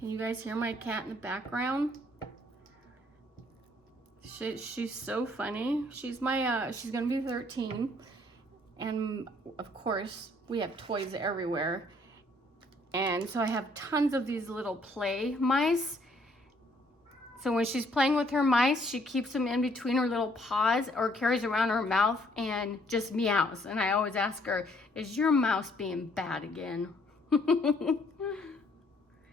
you guys hear my cat in the background? She's so funny. She's my, she's gonna be 13. And of course, we have toys everywhere. And so I have tons of these little play mice. So when she's playing with her mice, she keeps them in between her little paws or carries around her mouth and just meows. And I always ask her, is your mouse being bad again?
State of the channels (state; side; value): normal; both; correlation 0.65